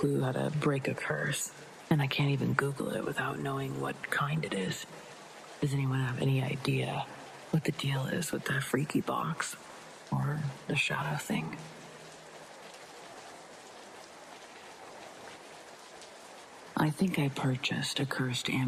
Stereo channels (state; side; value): identical; both; correlation 1.00